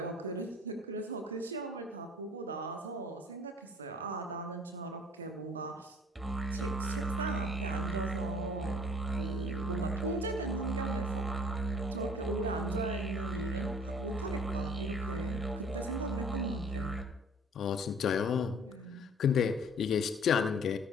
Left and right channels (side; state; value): both; normal; correlation 0.53